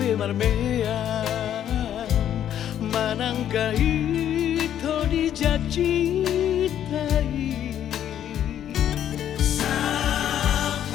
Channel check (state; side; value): quieter; right; 10.4 dB